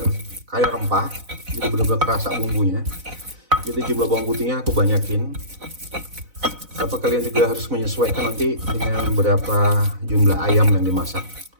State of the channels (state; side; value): late; left; 4.0 ms